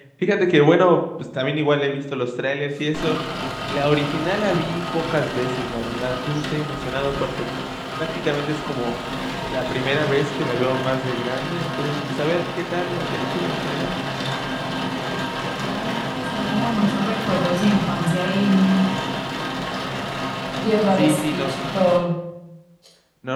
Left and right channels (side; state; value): both; identical; correlation 1.00